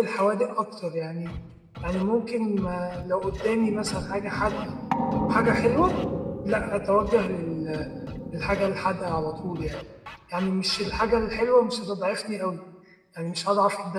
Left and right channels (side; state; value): both; identical; correlation 1.00